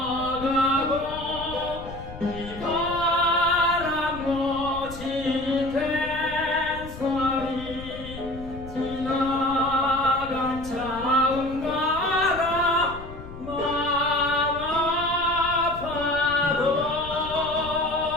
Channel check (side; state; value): left; noise; rumble, 13 dB below the sound